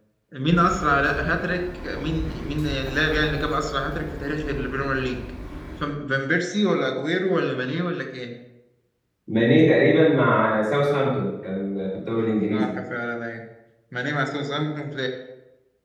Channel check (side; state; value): both; identical; correlation 1.00